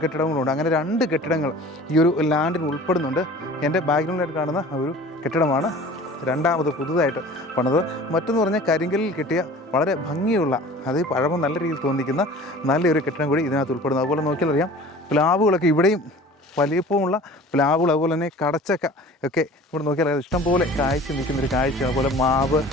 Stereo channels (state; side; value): normal; both; correlation 0.44